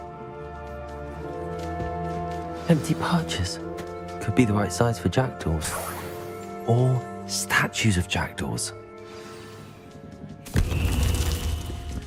Empty perches. Could be the right size for jackdaws. Or statues of jackdaws.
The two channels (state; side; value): identical; both; correlation 1.00